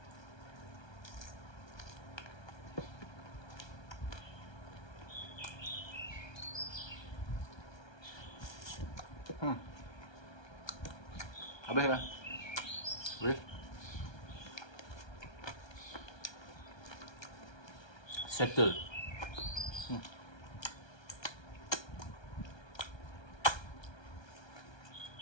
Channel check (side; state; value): right; late; 1.3 ms